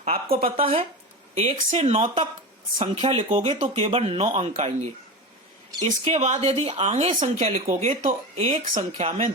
आपको पता है 1 से 9 तक संख्या लिखोगे तो केवल 9 अंक आएंगे। इसके बाद यदि आगे संख्या लिखोगे तो एक संख्या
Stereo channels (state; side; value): normal; both; correlation 0.24